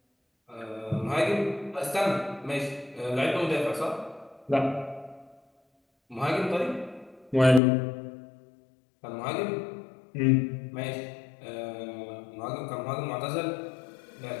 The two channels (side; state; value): right; drops out; at 7.6 s